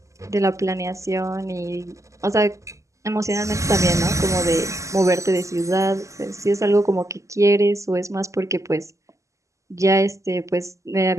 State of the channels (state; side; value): late; left; 0.15 ms